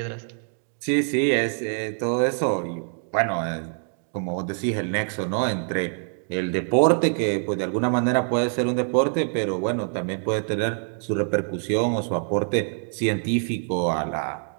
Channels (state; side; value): silent; left; 55 dB below the other